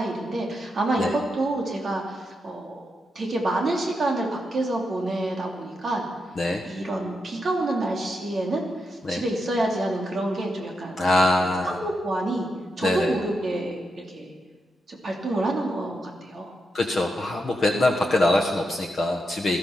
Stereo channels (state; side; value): normal; both; correlation 0.85